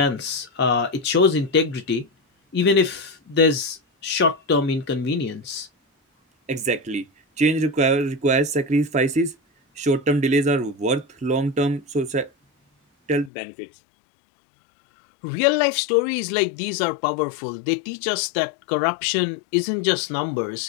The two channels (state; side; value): drops out; right; at 13.3 s